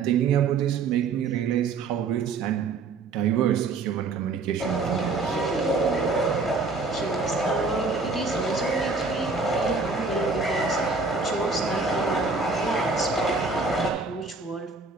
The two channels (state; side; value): quieter; left; 4.1 dB